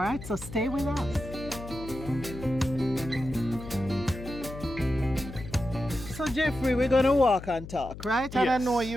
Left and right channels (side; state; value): left; noise; hum, 12 dB below the sound